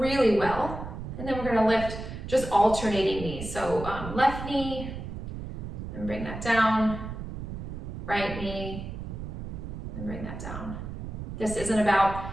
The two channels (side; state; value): right; noise; rumble, 8 dB below the sound